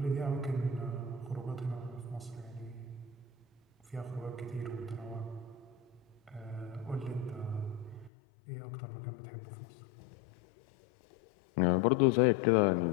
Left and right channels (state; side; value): drops out; right; at 8.1 s